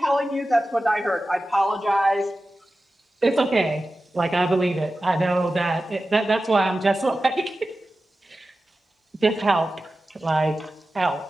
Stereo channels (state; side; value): normal; both; correlation 0.94